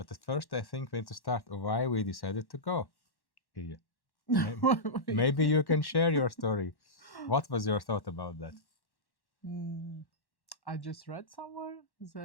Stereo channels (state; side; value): late; right; 1.1 ms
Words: at first, I think we need to start why we decided to go. Iya. Maybe you can share your story. What was your thought about that? Mm, I just read somewhere